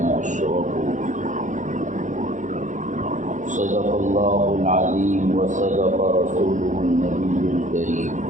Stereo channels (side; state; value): left; late; 0.36 ms